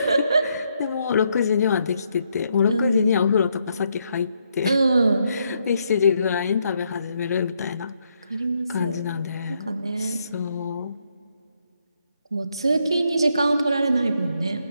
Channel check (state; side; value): inverted; both; correlation -0.76